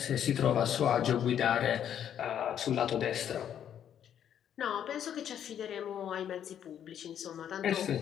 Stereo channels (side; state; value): right; quieter; 9.5 dB